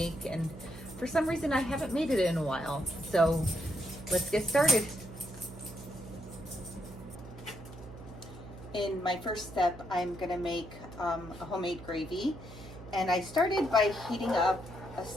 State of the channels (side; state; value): right; noise; hum, 15 dB below the sound